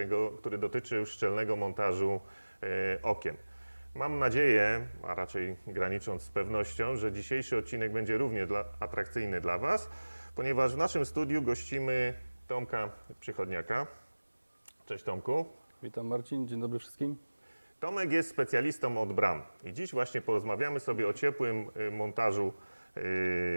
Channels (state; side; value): inverted; both; correlation -1.00